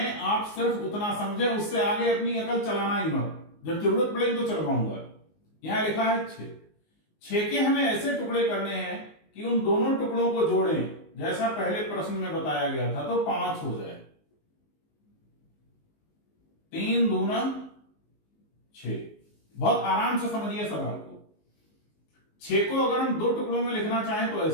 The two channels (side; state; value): right; late; 19 ms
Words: आप सिर्फ उतना समझें, उससे आगे अपनी अकल चलाना ही मत। जब जरूरत पड़ेगी तो चलवाऊंगा। यहां लिखा है 6। 6 के हमें ऐसे टुकड़े करने हैं कि उन दोनों टुकड़ों को जोड़ें जैसा पहले प्रश्न में बताया गया था तो 5 हो जाए। 3 दूना 6। बहुत आराम से समझिए सवाल को। 6 को अगर हम 2 टुकड़ों में लिखना चाहें तो